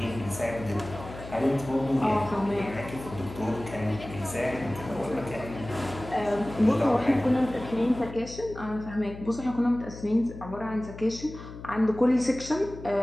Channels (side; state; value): left; noise; hum, 13 dB below the sound